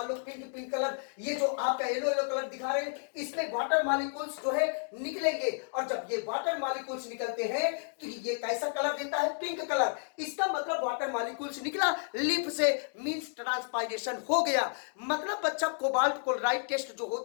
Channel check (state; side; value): silent; right; 57 dB below the other